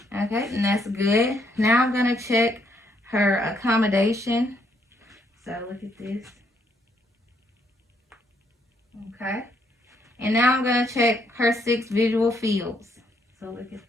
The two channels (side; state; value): both; normal; correlation 0.72